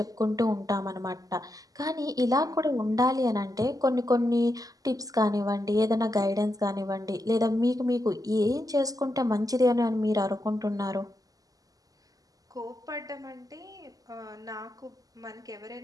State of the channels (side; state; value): left; late; 0.17 ms